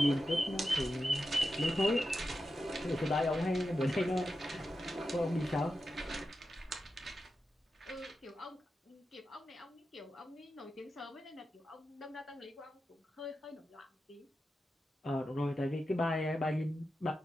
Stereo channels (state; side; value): normal; both; correlation 0.90